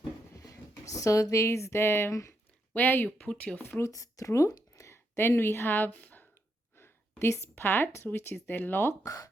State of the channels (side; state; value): both; normal; correlation 0.80